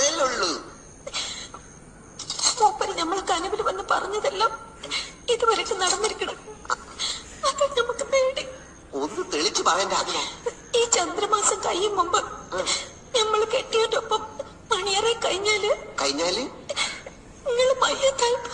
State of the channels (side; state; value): both; identical; correlation 1.00